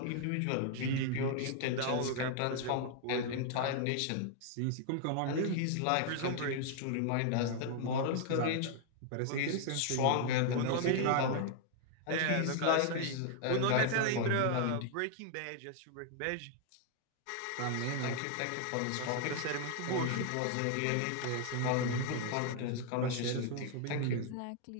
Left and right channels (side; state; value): both; different; correlation 0.00